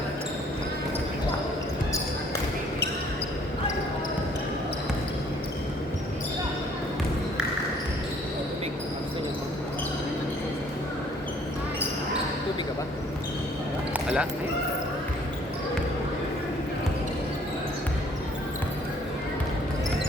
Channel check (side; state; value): both; normal; correlation 0.60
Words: Tubig ka ba? Wala?